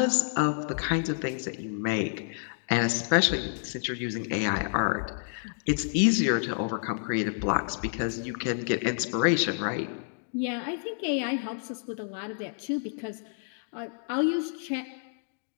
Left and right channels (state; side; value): silent; right; digital silence